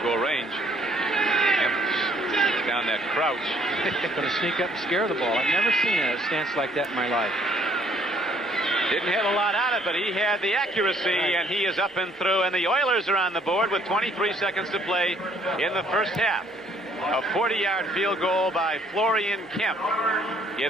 goal range. Kemp down that crouch. Going to sneak up and scare the ball. I've never seen a stance like that in my life. Didn't hit a lot on it, but he had the accuracy, and he is up and through. And the Oilers are on the board with 23 seconds to play in the first half. A 40-yard field goal by Florian Kemp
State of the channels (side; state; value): both; normal; correlation 0.63